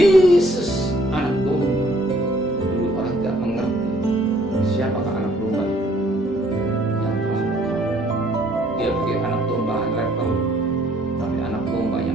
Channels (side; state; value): both; normal; correlation 0.62